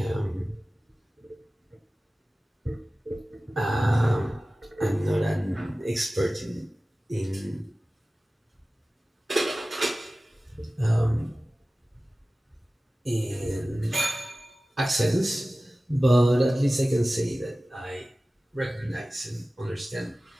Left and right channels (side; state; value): both; normal; correlation 0.97